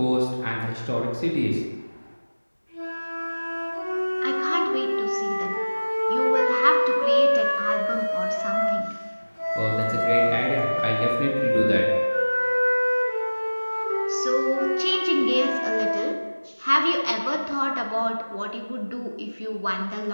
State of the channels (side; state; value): both; inverted; correlation -1.00